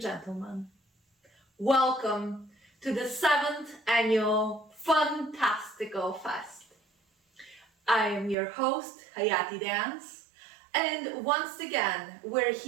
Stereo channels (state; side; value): drops out; left; at 8.3 s